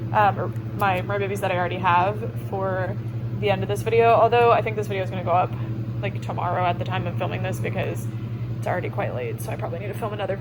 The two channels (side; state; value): both; identical; correlation 1.00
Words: Merbabies that I already have for the end of this video, although I think this video is going to go up like tomorrow at the time of filming this because it's already quite late, so I probably need to film another